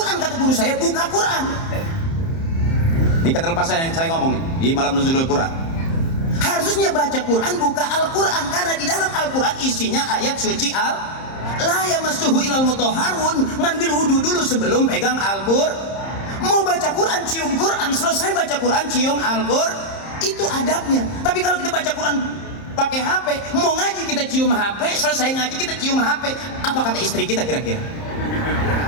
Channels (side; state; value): right; late; 30 ms